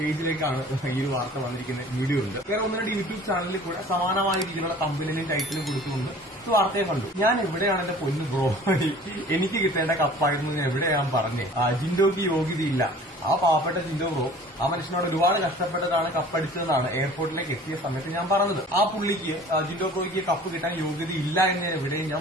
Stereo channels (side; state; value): both; normal; correlation 0.47